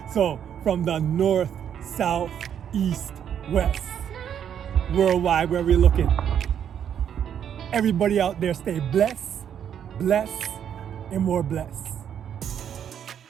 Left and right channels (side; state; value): left; quieter; 9.0 dB